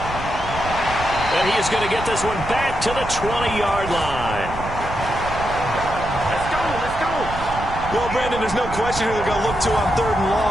And he is going to get this one back to the 20-yard line. Let's go, let's go. Well, Brandon, there's no question who they're going to look to on 3rd and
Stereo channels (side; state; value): right; noise; rumble, 9 dB below the sound